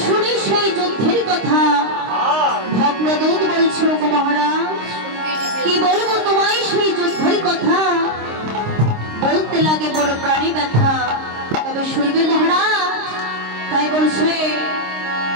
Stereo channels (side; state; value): left; late; 26 ms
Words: শুনি সেই যুদ্ধের কথা। ভদ্রদূত বলছে গো মহারাজ, কি বলবো তোমায় সেই যুদ্ধের কথা, বলতে লাগে বড় প্রাণী ব্যথা, তবে শুনবে মহারাজ। তাই বলছে